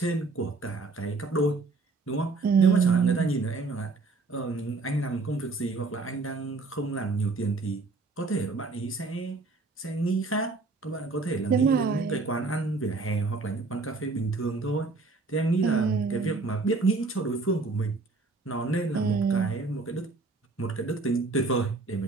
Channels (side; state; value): left; quieter; 3.8 dB